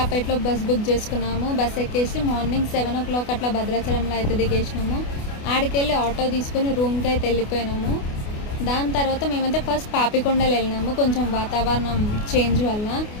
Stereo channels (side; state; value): right; late; 28 ms